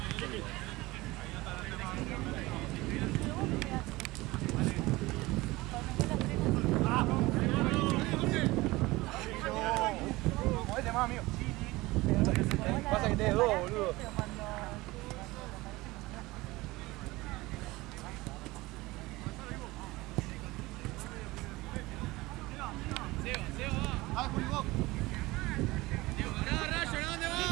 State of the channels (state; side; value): quieter; left; 20.5 dB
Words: Movete más, amigo. Pasa que tenés dos, boludo.